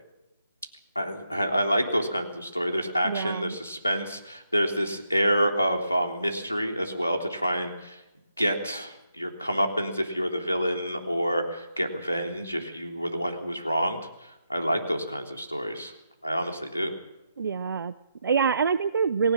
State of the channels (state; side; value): inverted; both; correlation -0.82